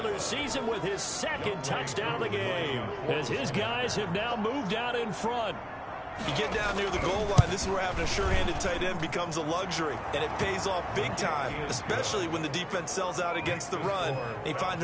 season with his 2nd touchdown of the game, as his guys have now moved out in front. You get down near the goal line, this is where having a sure-handed tight end becomes a luxury, and it pays off big time, especially when the defense sells out against the run, and he finds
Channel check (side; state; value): both; identical; correlation 1.00